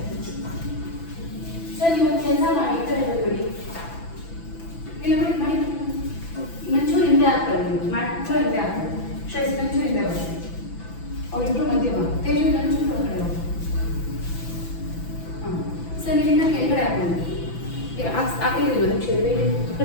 sir ನೀವು ಕೆಲಸ ಮಾಡಿ ಈ ಕಡೆ ಬಿಡಿ ಇಲ್ಲ ಬಿಡಿ ಮಾಡಿ ಮಂಚೂರು ಹಿಂದೆ ಹಾಕ್ತಾರೆ ಮಂಚೂರು ಹಿಂದೆ ಹಾಕ್ತಾರೆ ಶ್ರೇಷ್ಠ ಮಂಚೂರು ಹಿಂದೆ ಬನ್ನಿ ಅವರಿಬ್ಬರು ಮಧ್ಯೆ ಬಾ ತೇಜು ಮಂಚೂರು ಹೊರಗಡೆ ಹೋಗಿ ಹಾಂ ಸರ್ ನೀವಿಂದ ಕೆಳಗಡೆ ಹಾಕೊಂಡು ಹಾಕಿರಲಿಲ್ಲ ನಿಮಿಷ ಈ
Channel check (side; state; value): right; late; 6.0 ms